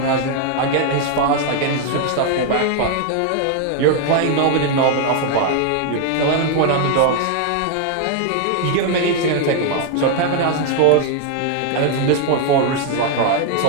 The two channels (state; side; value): different; both; correlation 0.00